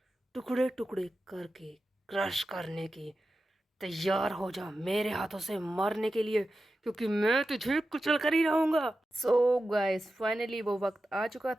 टुकड़े टुकड़े करके क्रश करने की। तैयार हो जा मेरे हाथों से मरने के लिए, क्योंकि मैं तुझे कुचल कर ही रहूंगा। सो गाइस, फाइनली वो वक्त आ चुका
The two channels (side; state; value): both; normal; correlation 0.92